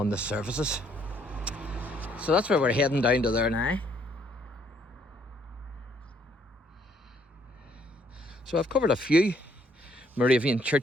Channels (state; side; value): normal; both; correlation 0.67